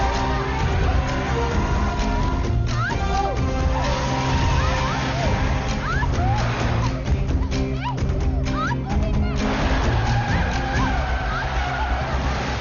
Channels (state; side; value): identical; both; correlation 1.00